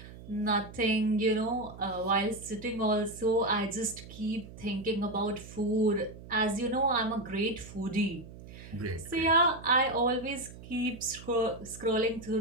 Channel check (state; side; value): noise; right; hum, 16 dB below the sound